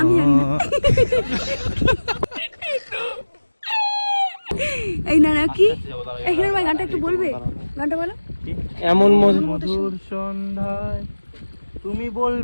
জানি না এই না নাকি এই হিরোর ভাই গানটা একটু বলবে গানটা বলো এমন মধুর সন্ধ্যায় তুমি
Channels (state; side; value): inverted; both; correlation -1.00